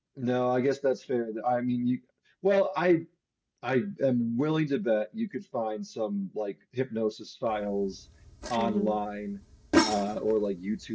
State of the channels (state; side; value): identical; both; correlation 1.00